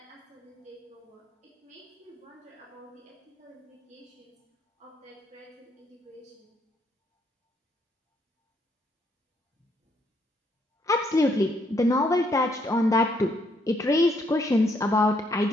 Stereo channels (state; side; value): normal; both; correlation 0.72